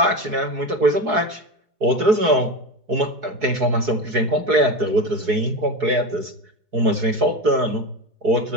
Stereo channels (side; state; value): left; late; 4.7 ms